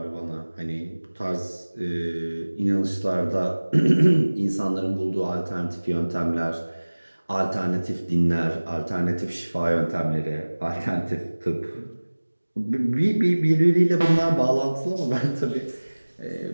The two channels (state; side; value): inverted; both; correlation -1.00